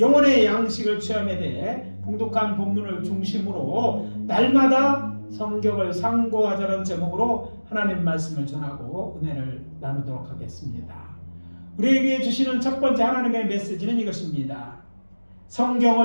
양식을 취함에 대해 봉독한 본문을 중심으로 날마다 성경을 상고하자는 제목으로 하나님 말씀을 전하고 은혜를 나누도록 하겠습니다. 우리에게 주시는 첫 번째 하나님의 메시지는 이것입니다.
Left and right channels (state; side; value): inverted; both; correlation -1.00